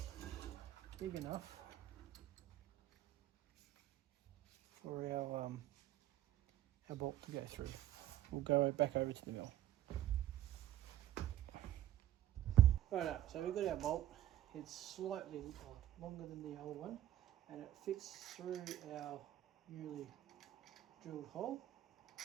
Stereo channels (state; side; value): quieter; left; 12.8 dB